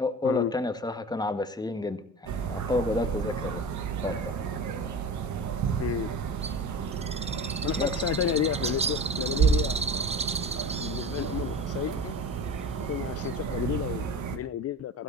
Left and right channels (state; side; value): normal; both; correlation 0.32